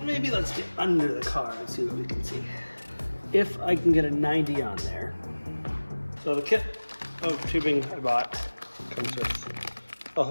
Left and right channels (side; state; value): both; inverted; correlation -1.00